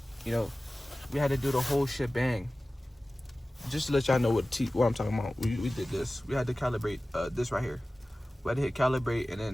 you know, we had to do the whole shebang. Just to let y'all know what I'm talking about. We did this. We had to calibrate this right here. We had to hit calibrate and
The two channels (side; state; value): both; normal; correlation 0.97